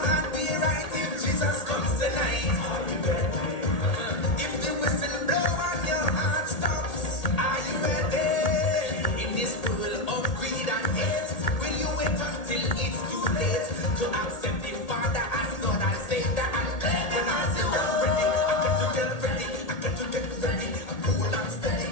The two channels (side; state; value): right; late; 1.8 ms